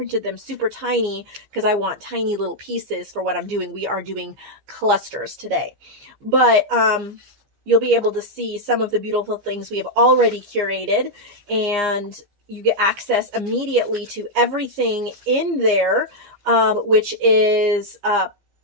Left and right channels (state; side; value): late; left; 15 ms